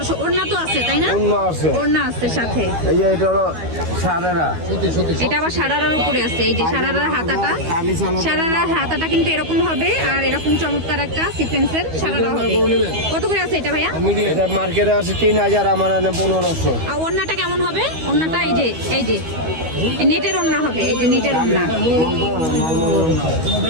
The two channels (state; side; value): late; left; 12 ms